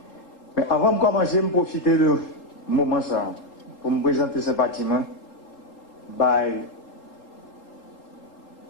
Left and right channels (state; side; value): late; right; 3.8 ms